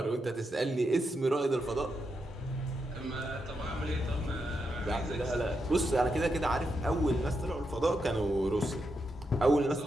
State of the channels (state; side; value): normal; both; correlation 0.84